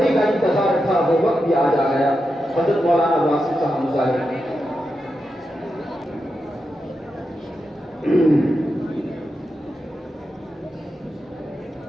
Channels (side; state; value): both; normal; correlation 0.88